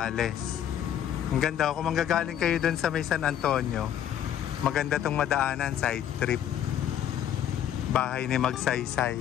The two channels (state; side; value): quieter; right; 10.2 dB